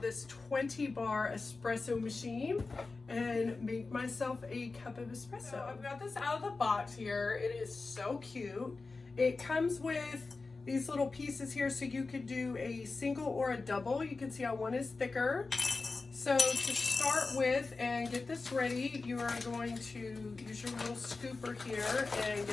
20 bar espresso machine and make myself a cup of espresso. So I've got this out of the box here. It is so cute. It comes with these little pieces here so you could do a single or a double. You can see how one is thicker. So to start with and get this ready, you are going to use your little scooper here and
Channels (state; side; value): quieter; right; 3.9 dB